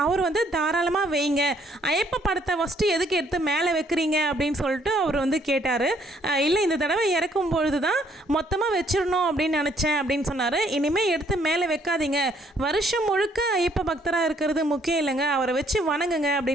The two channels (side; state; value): both; normal; correlation 0.66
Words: அவர் வந்து தாராளமாக வைங்க, ஐயப்ப படத்தை ஃபஸ்ட்டு எதுக்கு எடுத்து மேலே வைக்கிறீங்க அப்படின்னு சொல்லிட்டு அவர் வந்து கேட்டார். இல்லை, இந்த தடவை இறக்கும் பொழுது தான் மொத்தமாக வச்சிடணும் அப்படின்னு நினச்சேன் அப்படின்னு சொன்னார். இனிமேல் எடுத்து மேலே வைக்காதீங்க, வருஷம் முழுக்க ஐயப்ப பக்தராக இருக்கிறது முக்கியம் இல்லைங்க, அவரை வச்சு வணங்குங்க